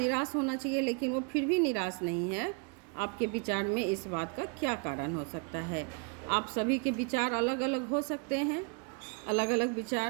होना चाहिए, लेकिन वो फिर भी निराश नहीं है। आपके विचार में इस बात का क्या कारण हो सकता है? आप सभी के विचार अलग अलग हो सकते हैं, अलग अलग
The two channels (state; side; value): quieter; left; 34.7 dB